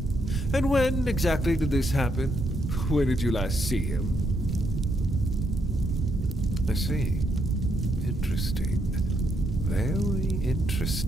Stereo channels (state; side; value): normal; both; correlation 0.77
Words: And when exactly did this happen? When did you last see him? I see. Interesting. Very